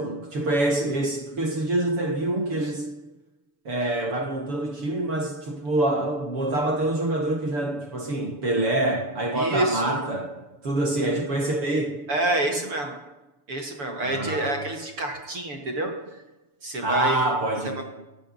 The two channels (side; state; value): left; late; 6.9 ms